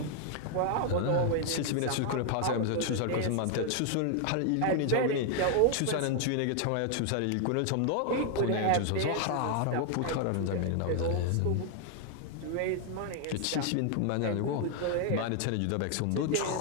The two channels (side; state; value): both; different; correlation 0.00